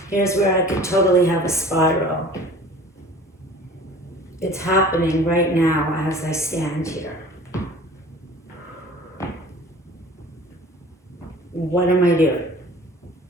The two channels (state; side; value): normal; both; correlation 0.45